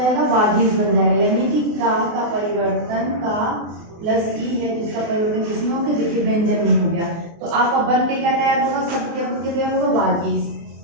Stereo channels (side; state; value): left; late; 24 ms